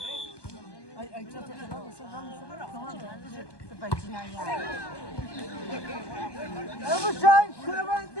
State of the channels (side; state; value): right; late; 1.2 ms